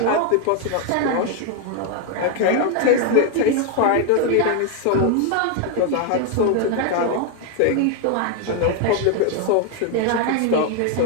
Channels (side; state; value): both; different; correlation 0.01